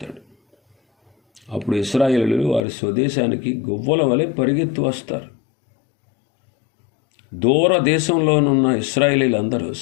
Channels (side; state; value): right; drops out; at 2.7 s